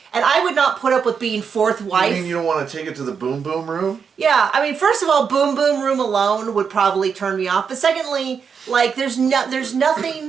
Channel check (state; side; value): quieter; left; 6.4 dB